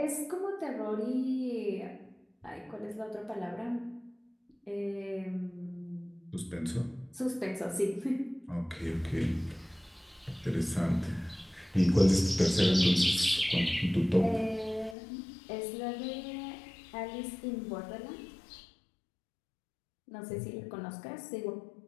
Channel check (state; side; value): drops out; right; at 15.0 s